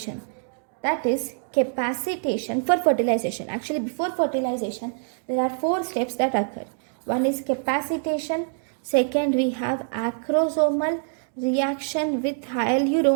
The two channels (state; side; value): silent; left; digital silence